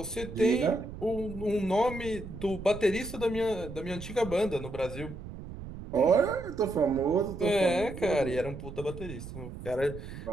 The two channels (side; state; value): right; noise; rumble, 11 dB below the sound